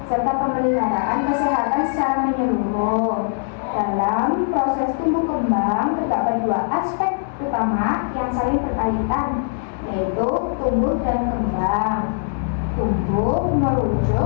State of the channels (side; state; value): right; silent; digital silence